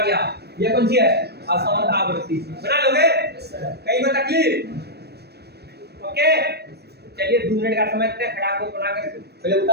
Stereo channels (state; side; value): late; left; 0.47 ms